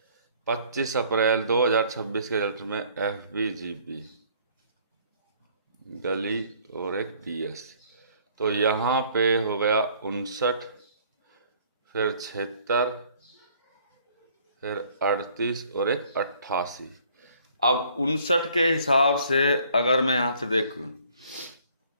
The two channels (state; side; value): inverted; both; correlation -0.59